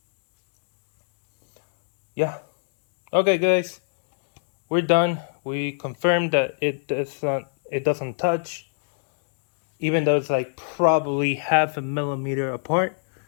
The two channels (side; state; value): right; silent; digital silence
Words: yeah. Okay, guys, we're done. We confirmed that it doesn't touch, even though it's like probably 0.5 millimeter apart,